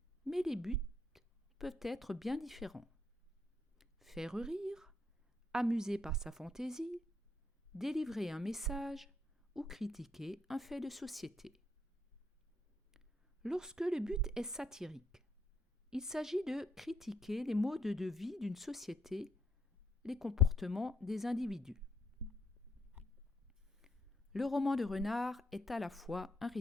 mais les buts peuvent être bien différents. Faire rire, amuser par sa fantaisie, délivrer un message ou critiquer un fait de société. Lorsque le but est satirique, il s'agit de critiquer les modes de vie d'une société, les comportements des individus. Le roman de Renard est à la fois un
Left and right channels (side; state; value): both; normal; correlation 0.73